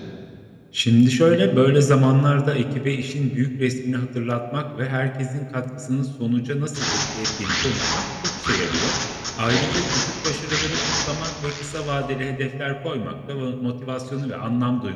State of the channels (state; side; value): identical; both; correlation 1.00